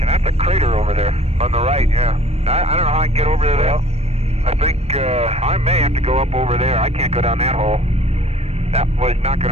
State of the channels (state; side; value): late; left; 0.30 ms